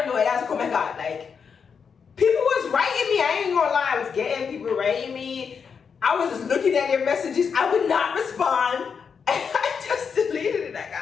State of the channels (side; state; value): right; quieter; 6.3 dB